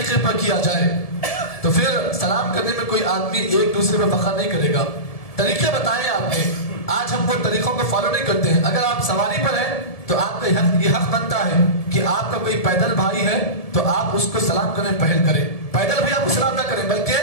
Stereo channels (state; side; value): late; right; 1.7 ms